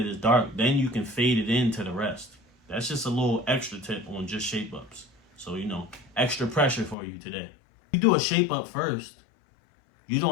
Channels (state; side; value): drops out; right; at 7.0 s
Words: it's dark, then you can fade it into the rest. That's just a little extra tip on just shape ups. So, extra pressure for you today. You do a shape up first. You